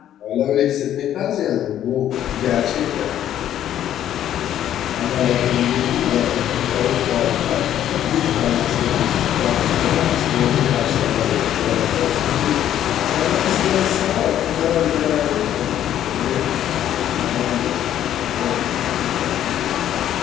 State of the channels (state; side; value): quieter; right; 11.2 dB